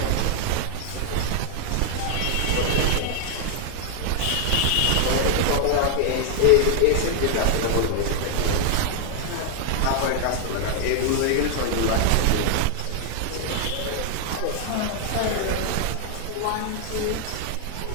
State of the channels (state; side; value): different; both; correlation 0.00